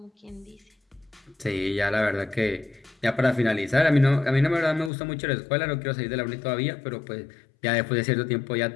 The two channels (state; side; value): drops out; right; at 4.9 s